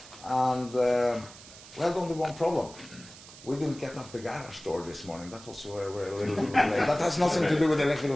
And we had only one problem. We didn't get up the garage door this morning. That was where we're a little late. That has nothing to do with the electrical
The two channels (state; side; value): noise; right; hiss, 18 dB below the sound